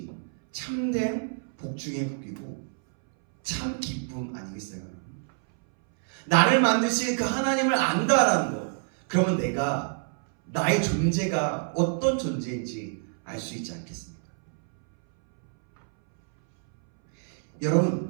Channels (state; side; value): silent; left; 60 dB below the other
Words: 참된 복 중의 복이고 참 기쁨 아니겠어요? 나를 만드신 그 하나님을 안다라는 것, 그러면 내가 나의 존재가 어떤 존재인지 알 수 있지 않겠습니까?